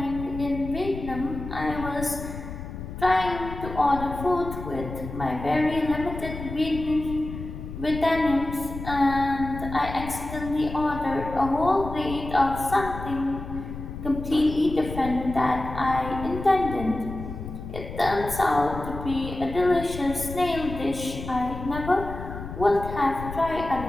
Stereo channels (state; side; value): noise; left; rumble, 9 dB below the sound